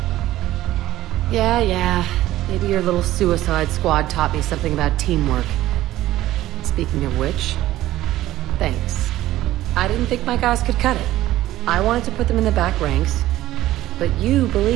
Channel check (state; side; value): quieter; left; 15.1 dB